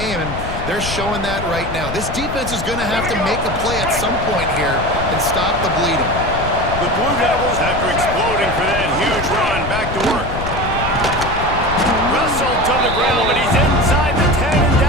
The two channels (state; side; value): noise; left; rumble, 7 dB below the sound